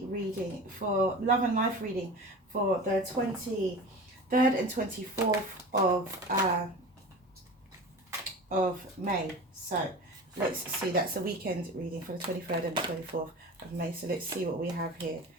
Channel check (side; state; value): both; normal; correlation 0.34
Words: reading for love and life reading for the 23rd and 24th of May. So let's see, that's the weekend reading for the 23rd and the 24th of May. So let's see what we have here.